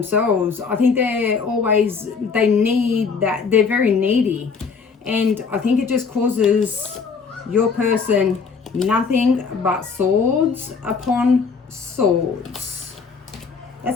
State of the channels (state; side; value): quieter; right; 5.3 dB